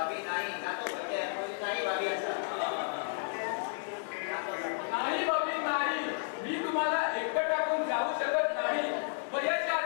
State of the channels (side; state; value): right; silent; digital silence